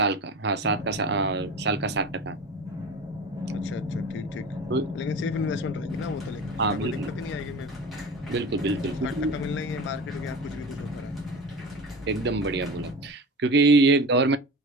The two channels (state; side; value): normal; both; correlation 0.32